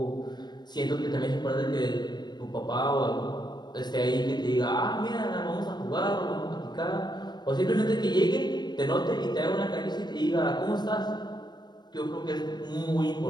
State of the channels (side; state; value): right; late; 0.21 ms